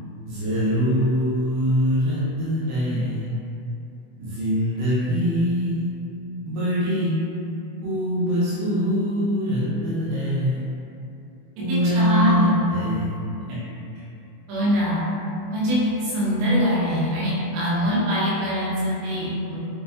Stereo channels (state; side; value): late; left; 24 ms